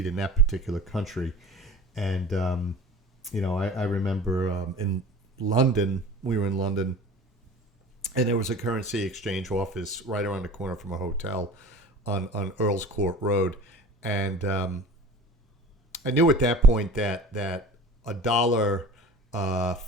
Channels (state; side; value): normal; both; correlation 0.40